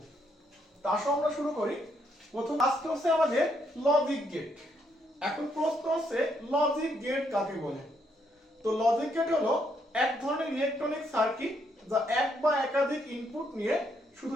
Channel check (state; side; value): normal; both; correlation 0.74